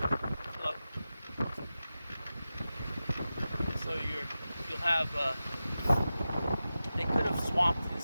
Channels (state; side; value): inverted; both; correlation -0.93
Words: So you'll have, they could have swamped in